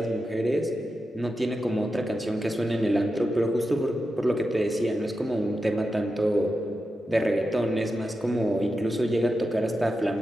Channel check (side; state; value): both; normal; correlation 0.90